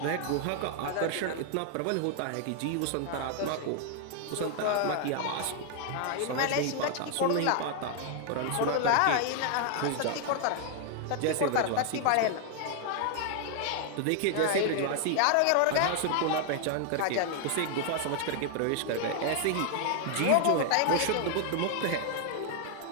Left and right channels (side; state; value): both; different; correlation 0.00